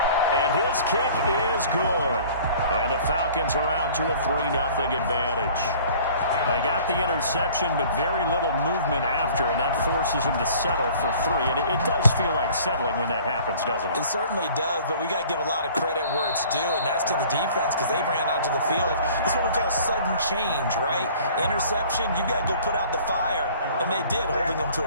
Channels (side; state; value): both; inverted; correlation -0.50